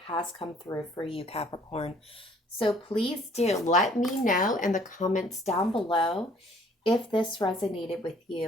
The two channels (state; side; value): normal; both; correlation 0.59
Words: has come through for you, Capricorn. So please do let me know in the comments down below if this resonated with